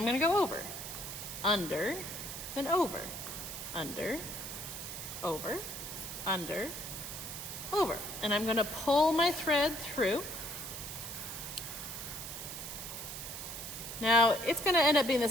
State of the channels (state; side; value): noise; right; hiss, 8 dB below the sound